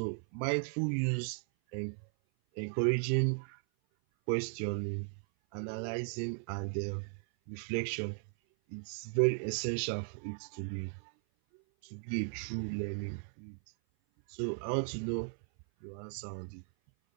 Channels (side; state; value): left; silent; 53 dB below the other